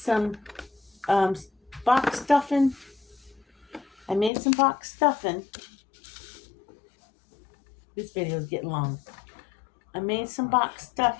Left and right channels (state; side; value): drops out; right; at 4.3 s